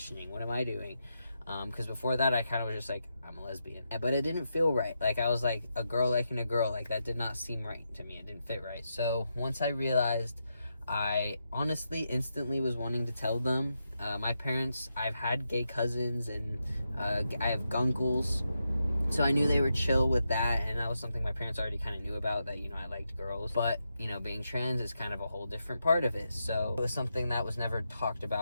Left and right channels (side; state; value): both; inverted; correlation -0.85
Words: What am I doing? Because before that, I kind of was just like, I'm a lesbian. But it didn't feel right. Like, I was like, a girl liking a girl. Like, that did not seem right to me. It didn't fit right. So, once I realized, I honestly instantly was wanting to tell them. My parents, I've had gay cousins, and I have gunkles. So I knew they were chill with that, and that was something my parents already kind of knew about, that, you know, I liked girls. But, you know, being trans is kind of a whole different part of it. So it was something that was never talked